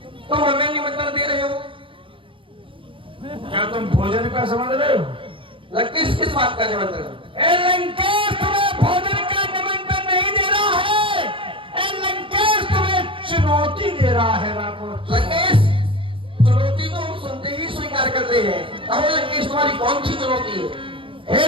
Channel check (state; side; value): late; left; 0.25 ms